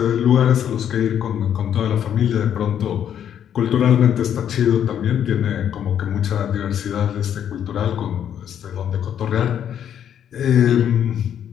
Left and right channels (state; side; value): quieter; right; 9.4 dB